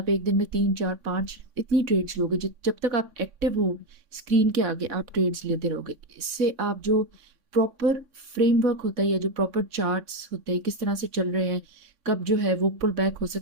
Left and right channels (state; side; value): late; left; 3.6 ms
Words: एक दिन में 3 4 5 इतनी ट्रेड्स लोगे। जब तक आप एक्टिव हो स्क्रीन के आगे आप ट्रेड्स लेते रहोगे। इससे आप जो प्रॉपर फ्रेमवर्क होता है या जो प्रॉपर चार्ट्स होते हैं किस तरह से चल रहे हैं, कब जो है वो पुल बैक हो